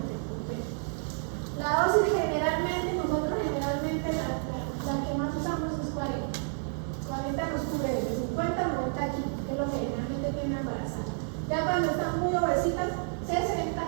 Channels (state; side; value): silent; left; 58 dB below the other